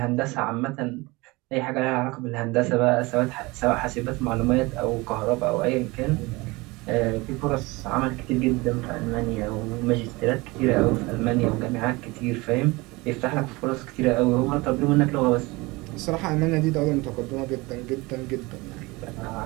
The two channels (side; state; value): left; quieter; 23.4 dB